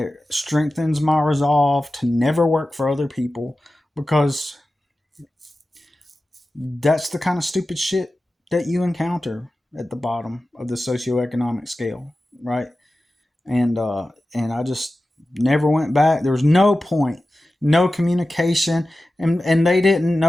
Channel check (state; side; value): normal; both; correlation 0.94